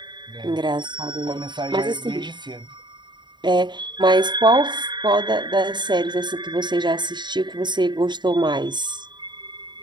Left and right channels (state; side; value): late; left; 0.22 ms